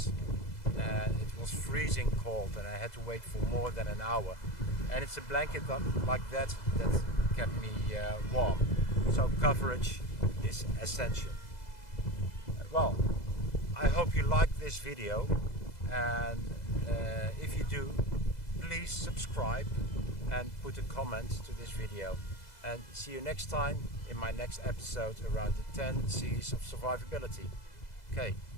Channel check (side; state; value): right; late; 2.0 ms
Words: It was freezing cold and I had to wait for more than an hour. And it's a blanket like that kept me warm. So coverage is essential. Well, I hope you liked this video, and if you do, please subscribe and put a comment to this video. And see you next time in my next episode around the 10 C's of survivability. Okay,